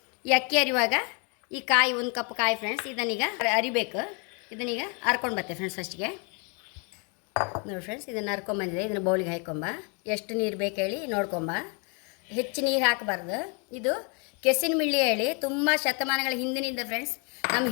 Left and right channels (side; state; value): right; quieter; 35.2 dB